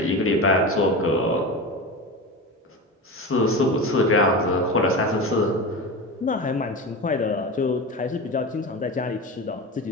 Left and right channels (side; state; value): both; normal; correlation 0.25